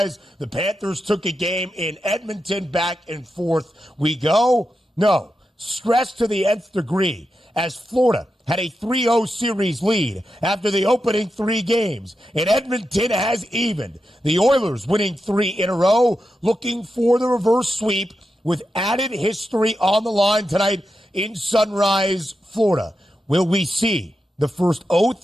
The Panthers took a game in Edmonton, back and forth we go. No, stress to the nth degree as Florida had a 3-0 series lead after the opening 3 games, and Edmonton has evened. The Oilers winning 3 in a row, looking for the reverse sweep with added history on the line tonight in Sunrise, Florida. Will we see the first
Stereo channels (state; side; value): normal; both; correlation 0.88